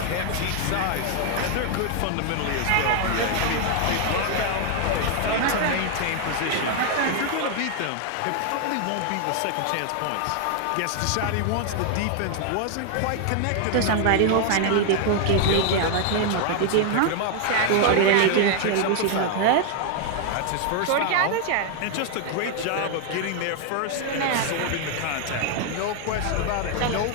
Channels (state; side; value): different; both; correlation 0.00